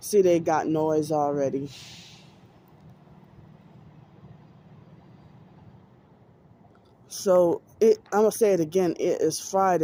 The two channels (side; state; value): both; identical; correlation 1.00